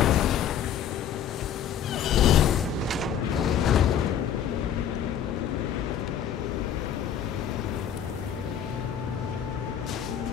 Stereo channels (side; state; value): right; quieter; 9.0 dB